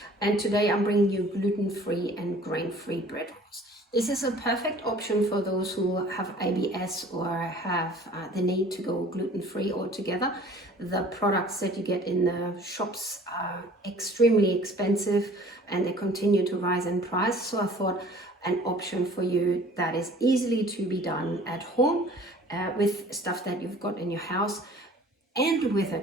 and today I'm bringing you gluten-free and grain-free bread rolls. This is a perfect option for those who have IBS or have the need to go gluten-free altogether. The products that you get in the shops are extremely expensive and they continue to rise in price, so I thought an option for you that is easily to be done at home with stuff that you've got in your house and with a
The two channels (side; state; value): both; normal; correlation 0.50